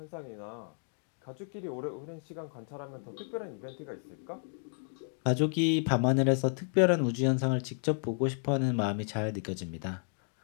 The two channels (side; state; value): right; silent; 56 dB below the other